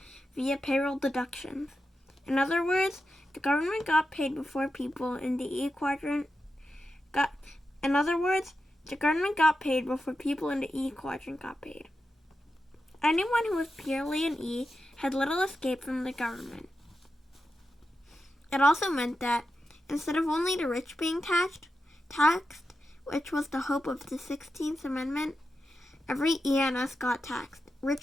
via payroll deductions. In other words, the government got paid before people in the E quadrant got paid. Anyone who was purely an E had little escape from the government. It also meant that instead of only the rich being taxed, which was the hope of the 16th Amendment, every E and S got taxed,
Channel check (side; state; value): both; normal; correlation 0.90